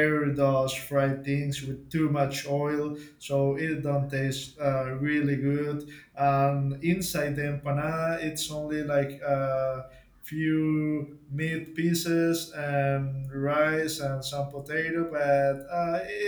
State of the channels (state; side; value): identical; both; correlation 1.00